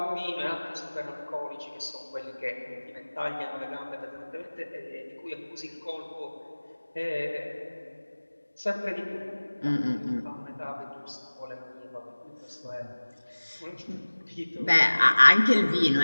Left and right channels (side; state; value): both; inverted; correlation -1.00